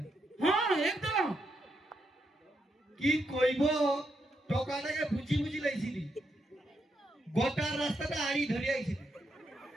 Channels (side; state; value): both; normal; correlation 0.81